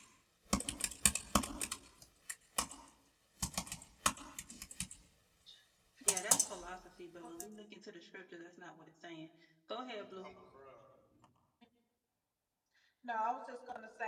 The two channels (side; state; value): both; identical; correlation 1.00